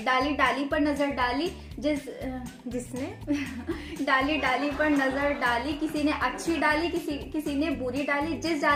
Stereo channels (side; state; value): both; identical; correlation 1.00